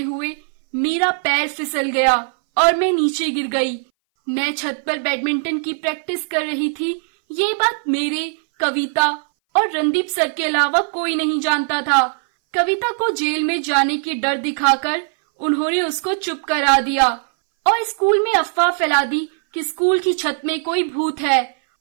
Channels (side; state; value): left; silent; 61 dB below the other